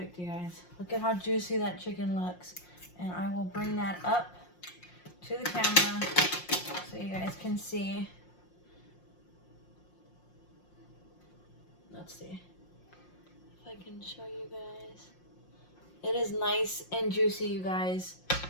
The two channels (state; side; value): late; right; 5.6 ms